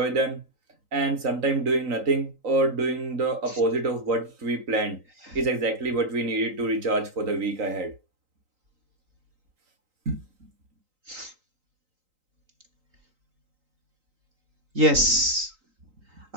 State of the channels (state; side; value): late; left; 3.8 ms